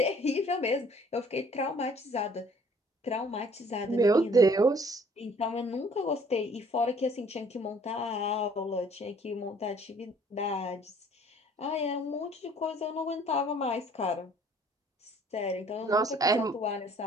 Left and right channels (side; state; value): both; normal; correlation 0.57